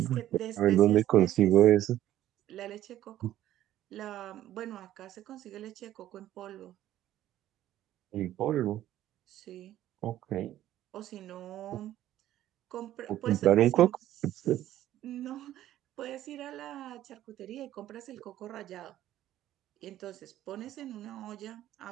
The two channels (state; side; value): quieter; left; 13.1 dB